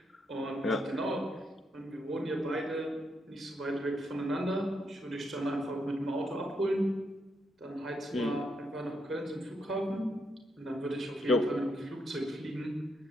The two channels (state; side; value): normal; both; correlation 0.79